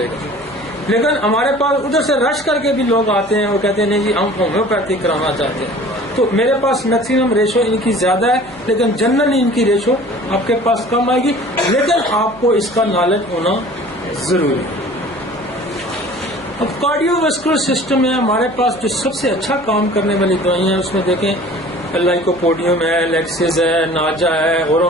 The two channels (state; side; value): noise; right; hum, 25 dB below the sound